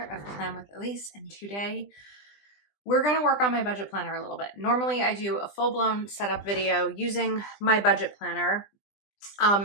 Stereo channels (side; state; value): right; late; 20 ms